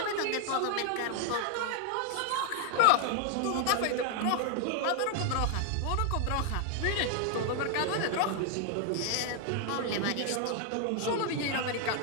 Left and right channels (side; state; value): both; different; correlation 0.00